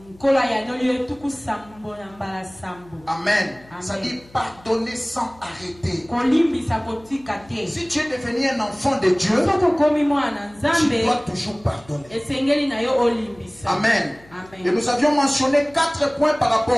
Amen. Ça dit pardonner sans arrêter. Si tu es devenu un enfant de Dieu, tu dois toujours pardonner. Amen. Et nous avions mentionné 4 points par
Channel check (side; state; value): left; noise; hum, 26 dB below the sound